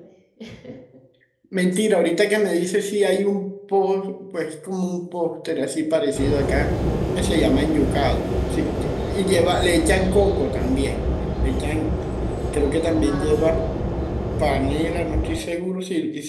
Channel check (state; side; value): identical; both; correlation 1.00